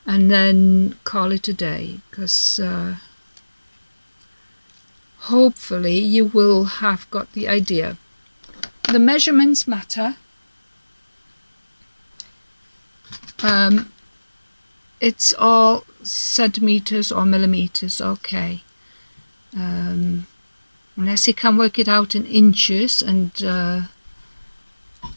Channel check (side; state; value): both; inverted; correlation -1.00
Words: and then call it a day? Because hopefully you will have got the idea. The measurements matter. It's all centimeters or millimeters, okay. Unless you can work it out in inches, and